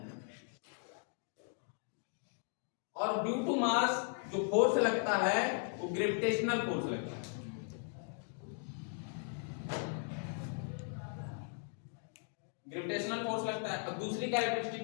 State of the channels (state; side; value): silent; right; 53 dB below the other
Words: और ड्यू टू मास जो फोर्स लगता है वो ग्रेविटेशनल फोर्स लगता है। ग्रेविटेशनल फोर्स लगता है। अब दूसरी